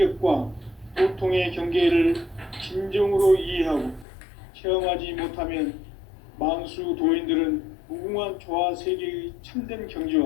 도통의 경계를 진정으로 이해하고 체험하지 못하면 만수 도인들은 무궁한 조화 세계의 참된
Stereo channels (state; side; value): drops out; right; at 4.0 s